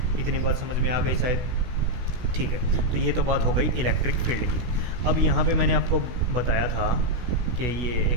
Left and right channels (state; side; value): late; left; 16 ms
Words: इतनी बात समझ में आ गई शायद। ठीक है, तो ये तो बात हो गई इलेक्ट्रिक फील्ड की। अब यहाँ पे मैंने आपको बताया था कि ये